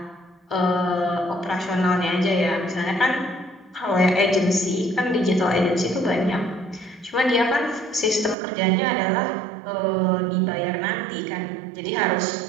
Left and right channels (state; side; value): drops out; left; at 8.3 s